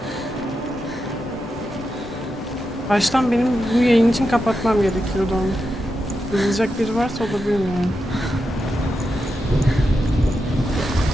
Baştan benim bu yayın için kapatmam gerekiyordu onu. Kızılacak biri varsa o da bilmiyorum.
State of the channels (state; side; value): normal; both; correlation 0.87